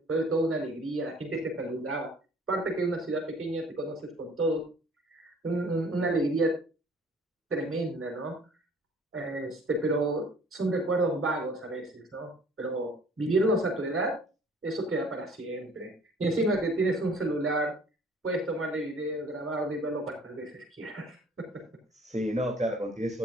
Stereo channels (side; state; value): both; normal; correlation 0.53